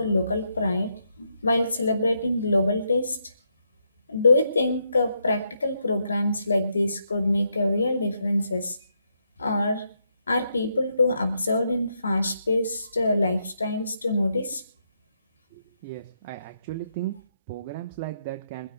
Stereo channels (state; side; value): inverted; both; correlation -0.79